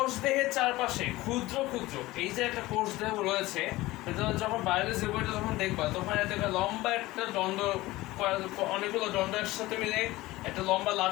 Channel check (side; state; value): right; quieter; 18.7 dB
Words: দেহের চারপাশে ক্ষুদ্র ক্ষুদ্র এই যে একটা কোষ দেহ রয়েছে, যখন বায়োলজি বইটা যখন দেখবা তখন একটা লম্বা একটা দণ্ড, অনেকগুলো দণ্ড একসাথে মিলে একটা লম্বা